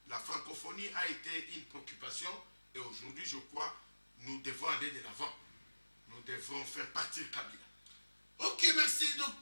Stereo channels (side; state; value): both; inverted; correlation -1.00